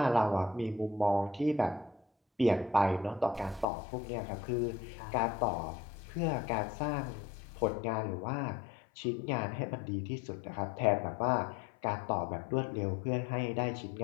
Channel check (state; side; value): drops out; right; at 3.7 s